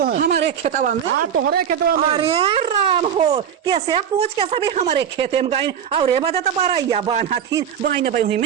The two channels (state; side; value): quieter; left; 8.5 dB